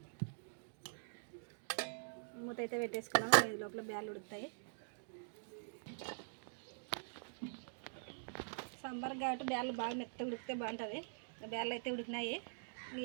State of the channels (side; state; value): left; silent; digital silence